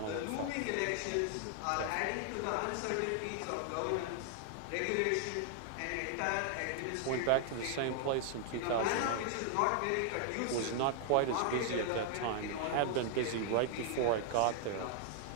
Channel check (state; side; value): different; both; correlation 0.00